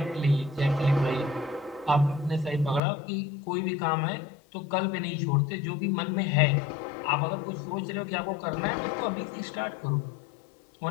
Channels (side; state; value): right; drops out; at 2.8 s